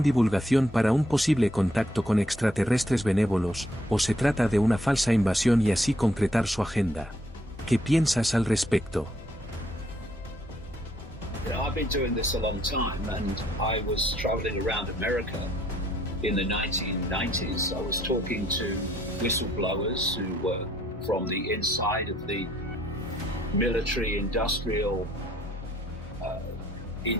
divulgación para un posible contacto con extraterrestres benévolos, o se trata de una falsa invasión y así concretar su agenda? ¿Qué piensas al respecto? I've been doing this a long time, and I was traveling around America in the 1990s. I was talking to whistleblowers who were from the inside of the military industrial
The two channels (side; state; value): both; normal; correlation 0.68